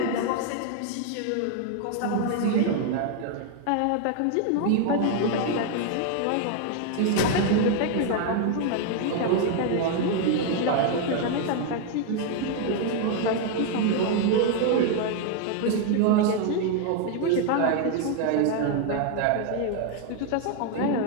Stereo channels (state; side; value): different; both; correlation 0.00